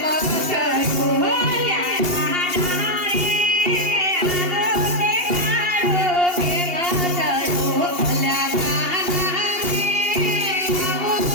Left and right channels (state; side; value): late; left; 2.8 ms